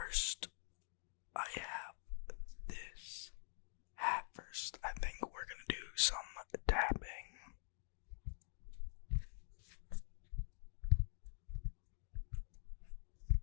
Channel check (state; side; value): silent; right; digital silence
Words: I have this hat first. I think we're gonna do some tapping.